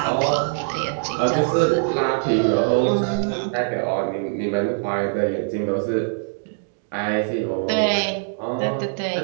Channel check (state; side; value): silent; left; digital silence